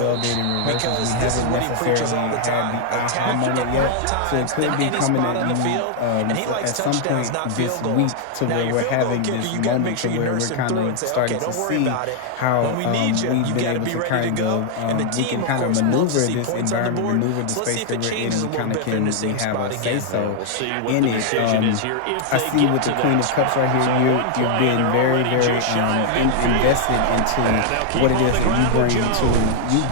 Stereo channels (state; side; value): different; both; correlation 0.00